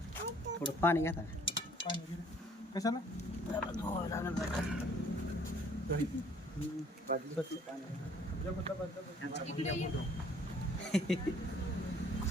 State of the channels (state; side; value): normal; both; correlation 0.58